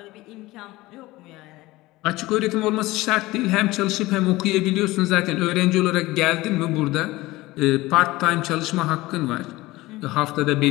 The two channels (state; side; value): quieter; right; 19.3 dB